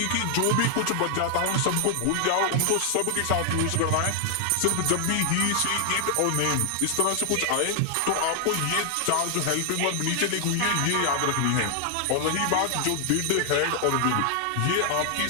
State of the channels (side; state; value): both; different; correlation 0.00